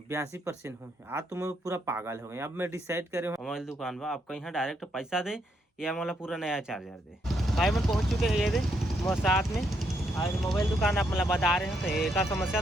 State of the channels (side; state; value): both; normal; correlation 0.76